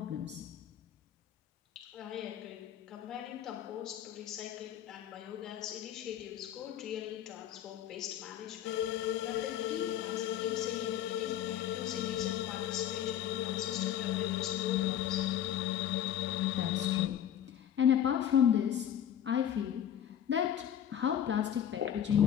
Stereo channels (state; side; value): quieter; right; 10.3 dB